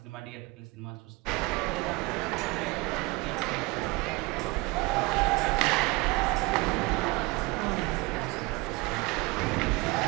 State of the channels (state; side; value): quieter; left; 24.9 dB